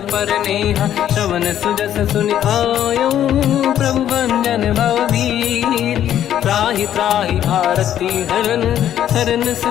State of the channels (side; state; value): right; quieter; 10.8 dB